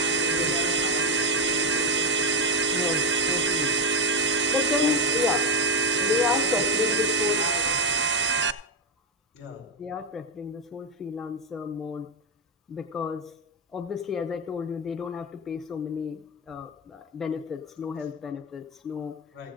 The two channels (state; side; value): normal; both; correlation 0.12